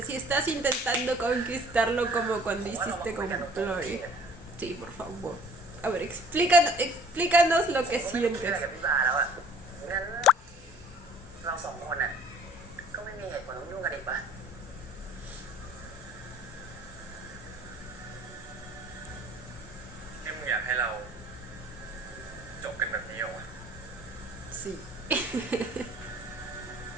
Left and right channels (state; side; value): normal; both; correlation 0.52